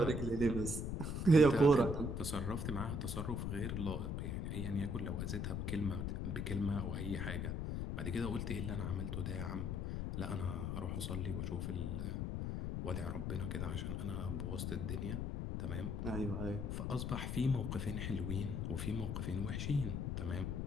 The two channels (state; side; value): noise; left; rumble, 1 dB below the sound